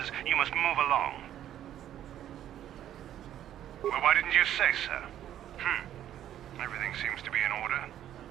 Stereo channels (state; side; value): quieter; left; 11.4 dB